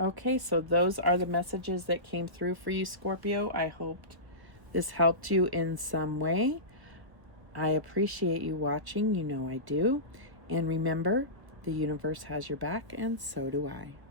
so those are the messages that came through for you, Scorpio. I hoped this helped you in some way. I appreciate you watching. You know I do. And remember, the universe has your back, and so do I.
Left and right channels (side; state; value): left; late; 1.2 ms